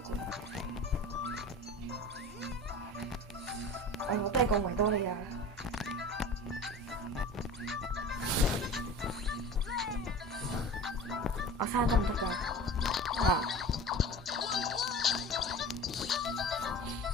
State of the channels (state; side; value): normal; both; correlation 0.36